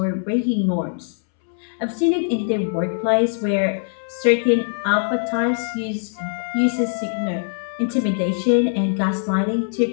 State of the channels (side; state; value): right; silent; 64 dB below the other